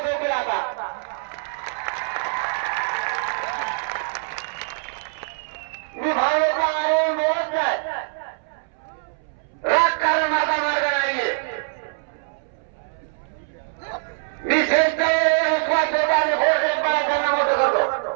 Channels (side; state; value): left; silent; 63 dB below the other